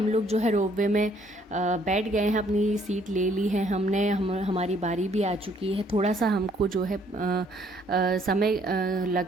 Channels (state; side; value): normal; both; correlation 0.64